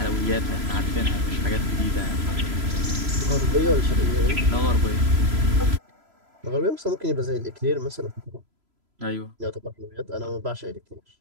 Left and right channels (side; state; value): left; late; 3.0 ms